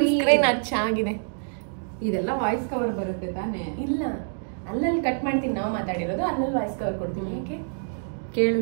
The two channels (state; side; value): silent; left; digital silence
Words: ಹಚ್ಚಾಗಿದೆ. ಇದೆಲ್ಲ ವಾಯ್ಸ್ ಕವರ್ ಬರುತ್ತೆ ತಾನೇ? ಇಲ್ಲ, ಅಲ್ಲಲ್ಲಿ ಕಟ್ ಮಾಡ್ತೀನಿ, ನಾವು ಮಾತಾಡಿರೋದು ಅಲ್ಲಲ್ಲಿ ವಾಯ್ಸ್ ಕವರ್ ಕೊಡ್ತೀನಿ. ಯಾಕೆ